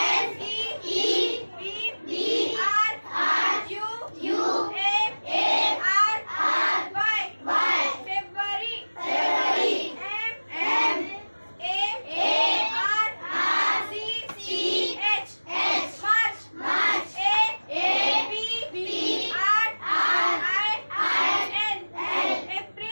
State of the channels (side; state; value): both; inverted; correlation -1.00